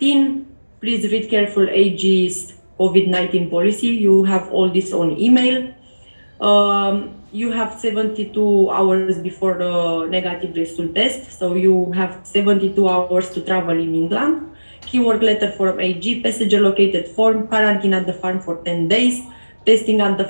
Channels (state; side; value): inverted; both; correlation -1.00